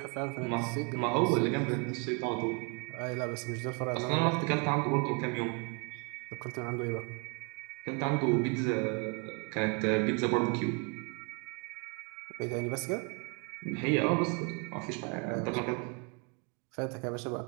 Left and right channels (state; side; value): quieter; left; 34.3 dB